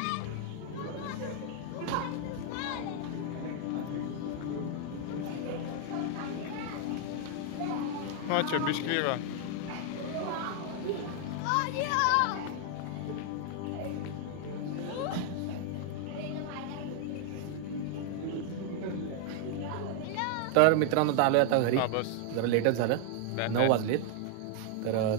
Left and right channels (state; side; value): different; both; correlation 0.00